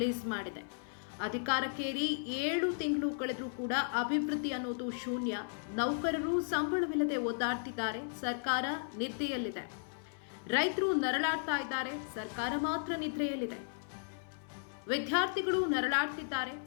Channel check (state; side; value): silent; right; 54 dB below the other